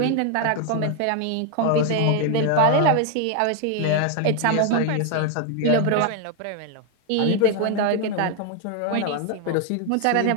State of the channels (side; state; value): both; different; correlation 0.01